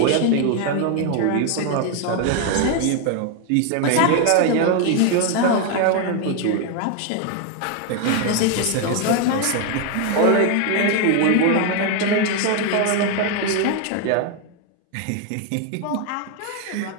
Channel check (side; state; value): both; different; correlation 0.01